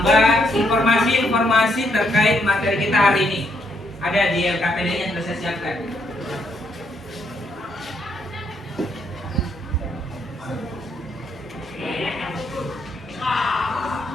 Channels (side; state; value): both; normal; correlation 0.74